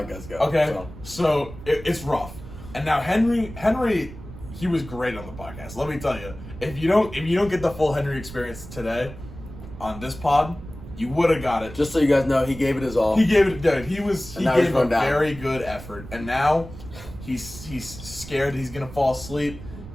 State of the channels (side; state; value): right; noise; rumble, 14 dB below the sound